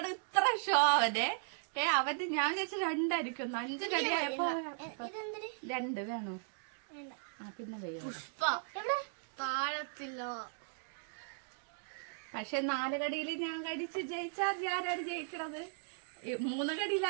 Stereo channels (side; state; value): left; silent; digital silence